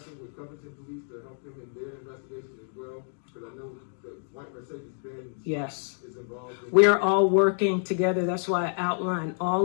with Covington Police to help them in their investigation as well? Because I know the white Mercedes-Benz Yes. is involved in. We are all working together. That's why I outlined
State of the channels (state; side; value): silent; right; 59 dB below the other